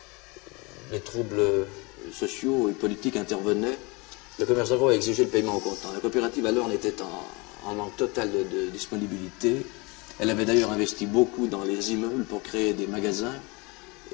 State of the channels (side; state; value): right; quieter; 27.2 dB